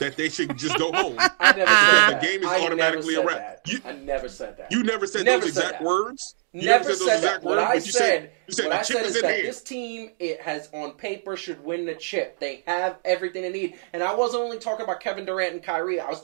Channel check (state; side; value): silent; left; digital silence